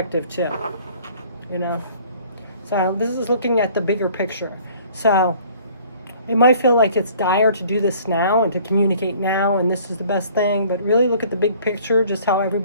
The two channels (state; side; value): inverted; both; correlation -0.54